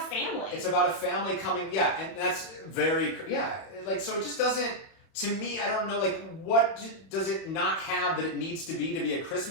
It's about a family coming, and that's very, like, so it just doesn't, to me, I don't know, like, what does it not have that it needs to be a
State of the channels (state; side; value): late; right; 31 ms